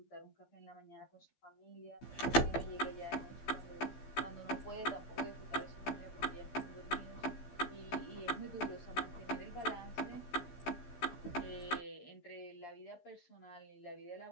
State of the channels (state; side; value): late; right; 15 ms